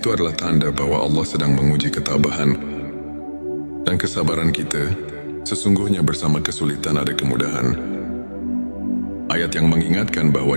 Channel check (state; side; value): inverted; both; correlation -1.00